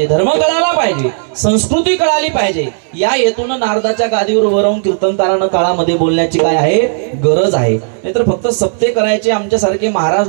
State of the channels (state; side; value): silent; left; digital silence